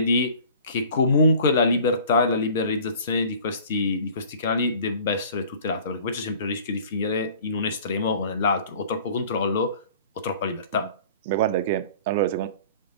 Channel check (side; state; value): both; inverted; correlation -0.47